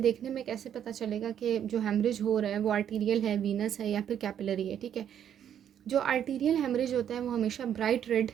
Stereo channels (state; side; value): quieter; left; 9.5 dB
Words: देखने में कैसे पता चलेगा कि जो हेमरेज हो रहा है वो आर्टीरियल है, वीनस है या फिर कैपिलरी है। ठीक है, जो आर्टीरियल हेमरेज होता है वो हमेशा ब्राइट रेड